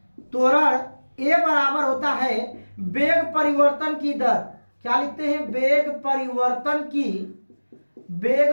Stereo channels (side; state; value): both; inverted; correlation -1.00